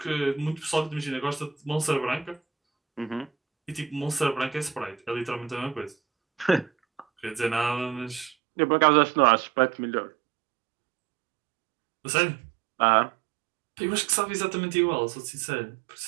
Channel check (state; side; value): drops out; left; at 8.3 s